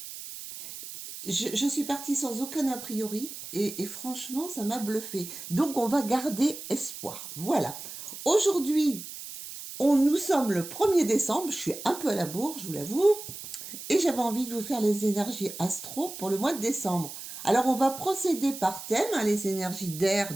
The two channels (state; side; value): noise; right; hiss, 11 dB below the sound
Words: Je suis partie sans aucun a priori et franchement, ça m'a bluffée. Donc, on va garder espoir. Voilà. Aujourd'hui, nous sommes le 1er décembre, je suis un peu à la bourre, je vous l'avoue, et j'avais envie de vous faire les énergies astro pour le mois de décembre. Alors, on va procéder par thème, hein, les énergies d'air,